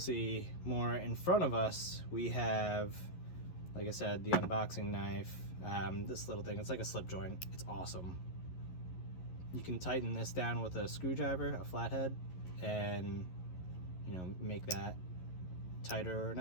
more in front of us. We have, like I said, the unboxing knife. This little thing, it's like a slip joint. It's awesome. You can tighten this down with a screwdriver, a flathead, and you know, make that tighter or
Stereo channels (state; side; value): late; right; 11 ms